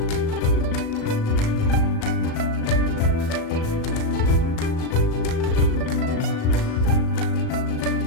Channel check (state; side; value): late; right; 37 ms